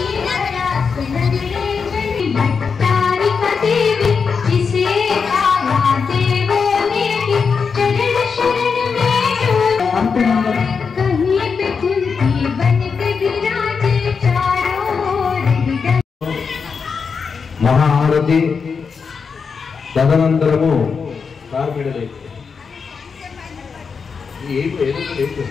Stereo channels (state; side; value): quieter; right; 5.6 dB